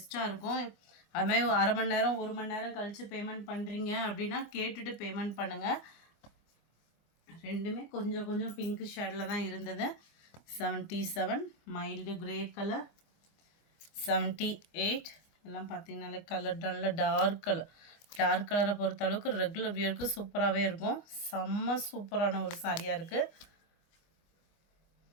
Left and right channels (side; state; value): right; late; 24 ms